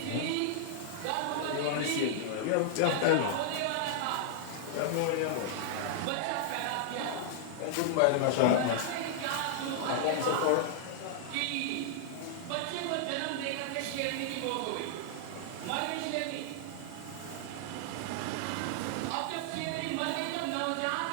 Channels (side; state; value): both; different; correlation -0.01